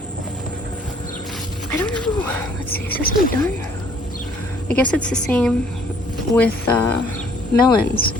I don't know. Let's see, is this one done? I guess it's the same with melons.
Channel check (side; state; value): both; normal; correlation 0.60